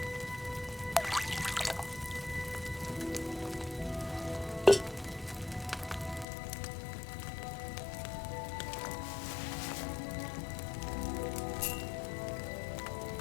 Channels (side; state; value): right; drops out; at 6.2 s